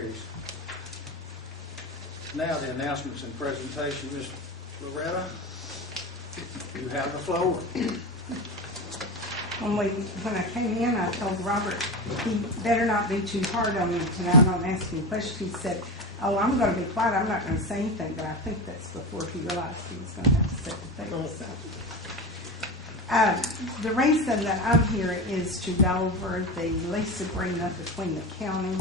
Now the announcements and presentation. Ms. Loretta, you have the floor. When I came in, I told Robert he better not be too hard on me tonight. I'm asking questions. He said, "Oh, I'm going to be quiet. I'm not going to say anything." But I think that's before he realized he was going to have to say the thing. So, the reason that I'm here is to go over the lease agreement between the county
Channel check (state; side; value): normal; both; correlation 0.22